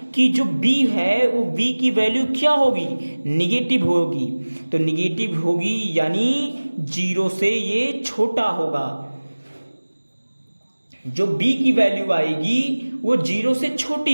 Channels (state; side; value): inverted; both; correlation -1.00